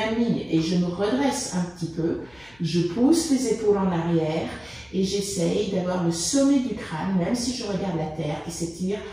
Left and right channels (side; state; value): left; noise; hum, 28 dB below the sound